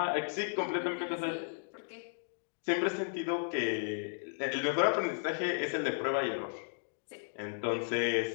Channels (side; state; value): right; silent; digital silence